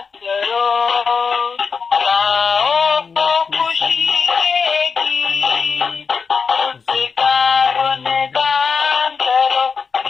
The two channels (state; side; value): quieter; right; 5.5 dB